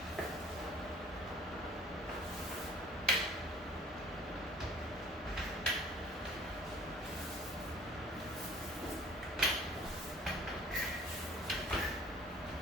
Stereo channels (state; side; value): normal; both; correlation 0.53